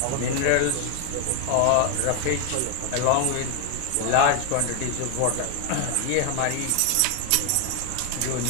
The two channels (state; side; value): different; both; correlation 0.01